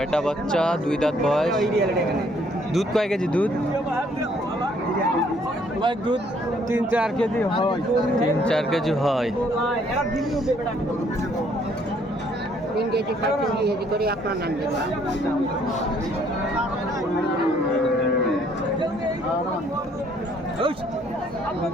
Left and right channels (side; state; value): both; normal; correlation 0.65